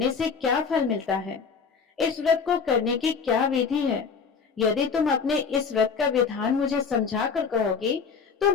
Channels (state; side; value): quieter; right; 5.7 dB